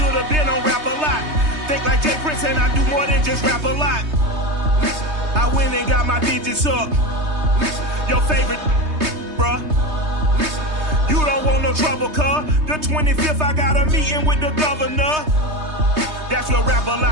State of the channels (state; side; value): late; left; 3.2 ms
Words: have been on Rap a Lot. Think like Jay Prince and I do more than just rap a lot. I went and got my digits up. Your favorite, bruh. You don't want no trouble, cuz. The 25th, I got a meeting with the governor. That's your rap a